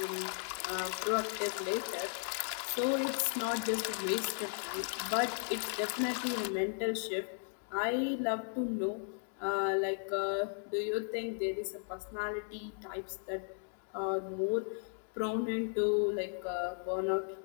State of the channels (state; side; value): silent; right; 54 dB below the other